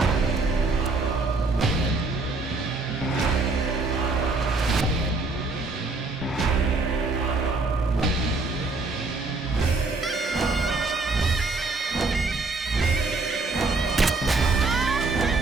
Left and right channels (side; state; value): left; quieter; 3.6 dB